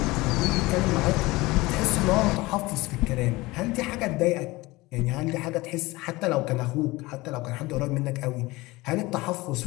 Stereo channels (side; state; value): right; quieter; 21.1 dB